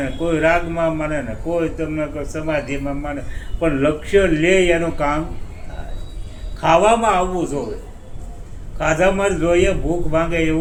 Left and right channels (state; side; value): identical; both; correlation 1.00